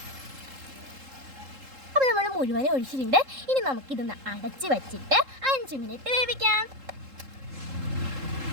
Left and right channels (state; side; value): late; left; 3.7 ms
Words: അപ്പോൾ നമ്മൾ മുഴുവനും ഒഴിച്ചിട്ടുണ്ട്. ഇനി നമുക്കിതൊന്ന് അടച്ച് വെച്ചിട്ട് 5 മിനിറ്റ് വേവിക്കാം.